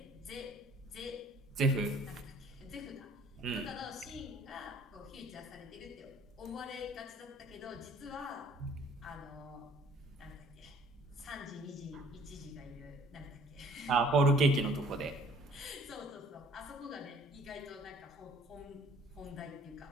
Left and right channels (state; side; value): normal; both; correlation 0.56